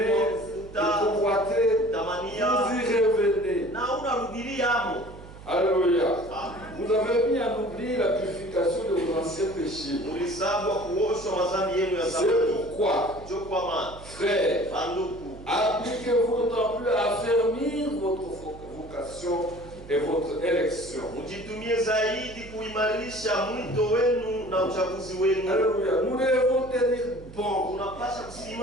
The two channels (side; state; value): right; noise; hum, 17 dB below the sound